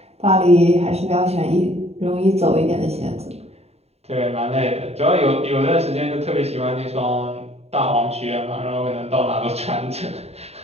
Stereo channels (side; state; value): left; late; 0.30 ms